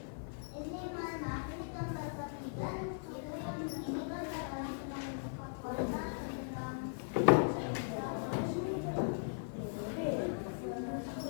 Ini mana? Ini gambar bagian. Itu yang ini kan adalah kota tentang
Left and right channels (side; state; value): right; silent; digital silence